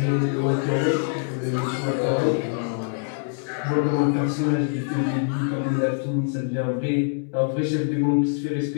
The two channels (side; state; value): right; silent; digital silence